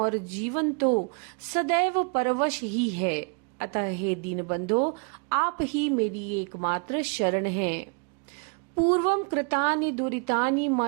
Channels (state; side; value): quieter; left; 36.4 dB